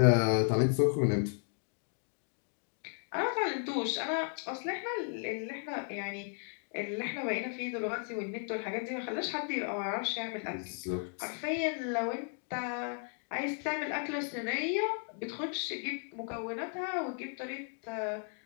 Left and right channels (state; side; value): silent; right; 55 dB below the other